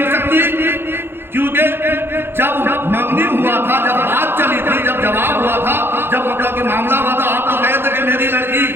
सकती? क्योंकि जब मंगनी हुआ था, जब बात चली थी, जब जवाब हुआ था, जब मतलब कि मामला हुआ था, आप तो कहे थे कि मेरी लड़की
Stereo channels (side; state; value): left; late; 0.11 ms